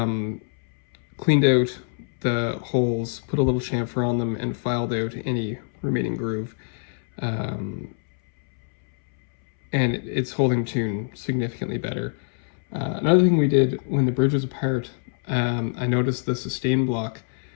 out the holes, put a little chamfer on them, and filed out any remaining groove. And it's holding tune significantly better. Another thing we did when the bridge was apart, I noticed the sustain block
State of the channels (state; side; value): silent; right; 62 dB below the other